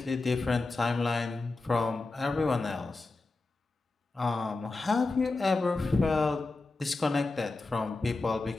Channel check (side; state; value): right; quieter; 3.4 dB